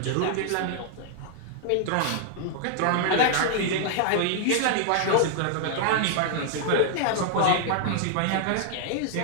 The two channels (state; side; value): different; both; correlation -0.01